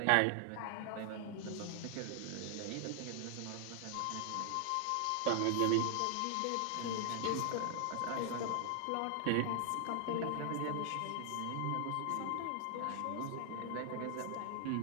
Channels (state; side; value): different; both; correlation 0.00